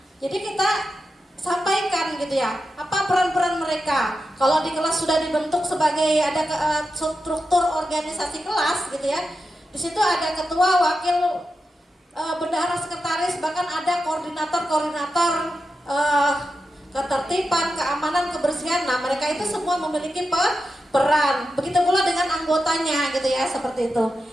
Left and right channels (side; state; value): both; normal; correlation 0.89